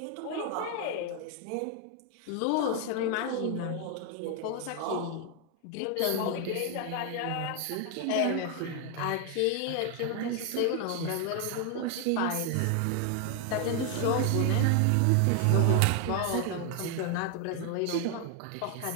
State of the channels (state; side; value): different; both; correlation 0.01